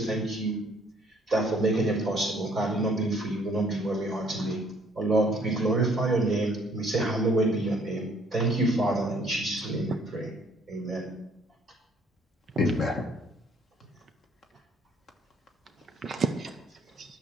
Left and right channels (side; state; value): both; normal; correlation 0.62